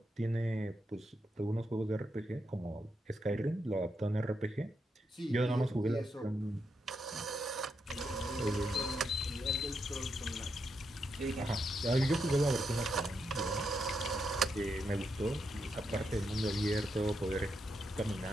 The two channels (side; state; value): both; normal; correlation 0.82